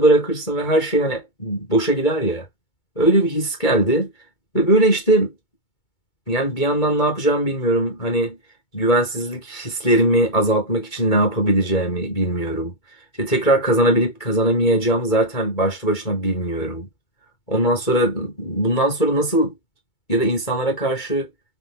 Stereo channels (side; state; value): right; late; 2.2 ms